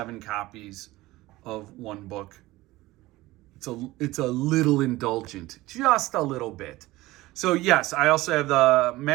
copies of one book. It's a little indulgent, just a little bit. So yes, I also have the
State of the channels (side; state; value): left; quieter; 18.6 dB